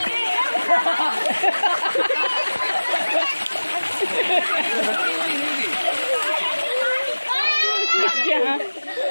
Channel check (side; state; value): both; inverted; correlation -1.00